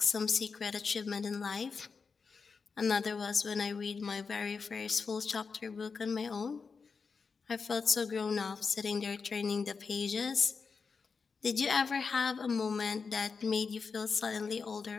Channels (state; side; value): quieter; right; 5.1 dB